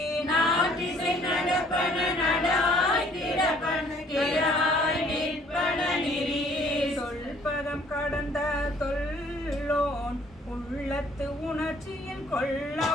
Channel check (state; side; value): normal; both; correlation 0.59